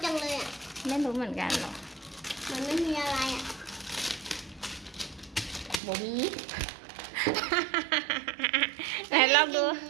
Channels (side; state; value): left; drops out; at 5.8 s